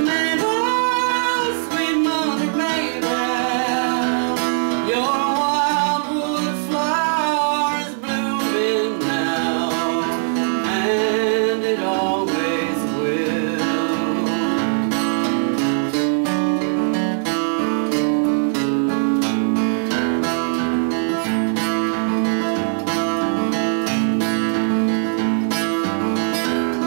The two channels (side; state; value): left; silent; 66 dB below the other